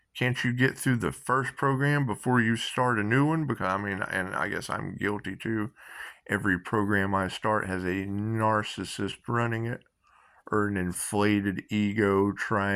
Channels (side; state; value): both; identical; correlation 1.00